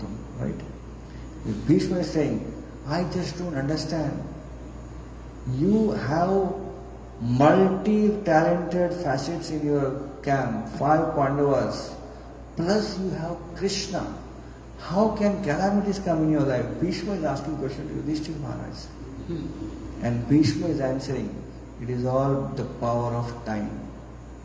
right? Bhishma is saying, I just don't understand. You have multi-talented facets in your camp, 5 Pandavas, plus you have Krishna. How can calamities come in your life? Bhishma is asking question to Yudhishthira Maharaj. And Bhishma is answering, it is all the power of time.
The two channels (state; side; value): identical; both; correlation 1.00